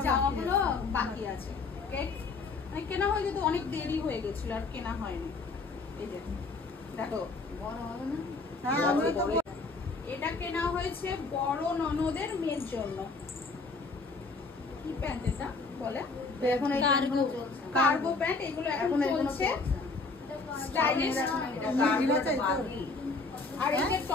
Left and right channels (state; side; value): quieter; right; 3.9 dB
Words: বাকি আছে। কেনা হয়ে যেত, অনেক দেরি হয়ে গেছিল আর কেনা হয়নি। এই যে দেখো, এটা কেনা হয়েছে বড় ননদের মেয়ের জন্য। কি প্যান্ট এটা বলে? কার্গো প্যান্ট, এগুলো এখন চলছে স্টাইলিশ। আর এই যে